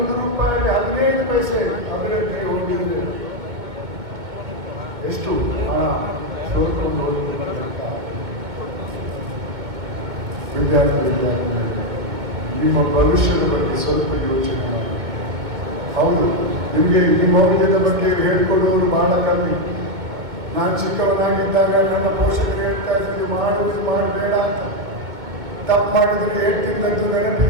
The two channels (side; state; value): left; late; 2.1 ms